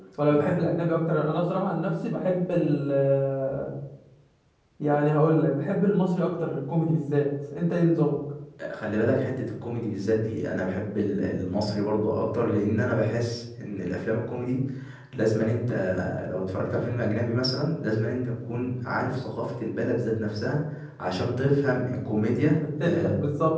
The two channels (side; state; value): both; identical; correlation 1.00